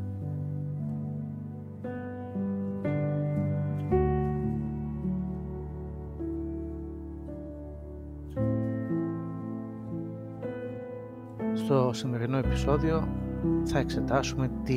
Στο σημερινό επεισόδιο θα εξετάσουμε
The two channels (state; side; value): identical; both; correlation 1.00